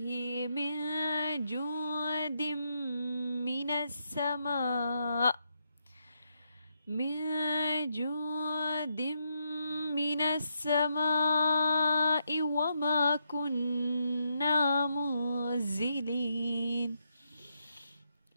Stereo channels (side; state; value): both; inverted; correlation -0.80